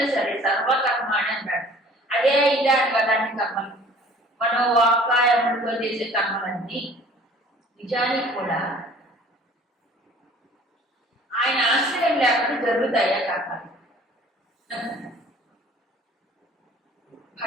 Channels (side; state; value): both; normal; correlation 0.51